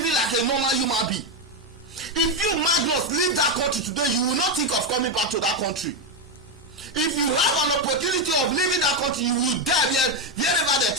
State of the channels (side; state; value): both; normal; correlation 0.07